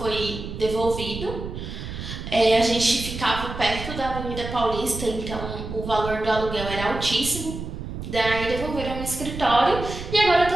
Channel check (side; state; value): right; noise; rumble, 8 dB below the sound